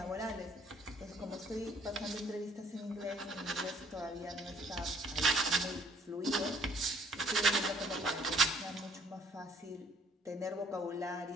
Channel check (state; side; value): normal; both; correlation 0.60